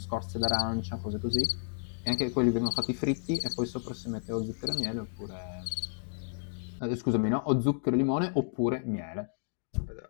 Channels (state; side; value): silent; right; digital silence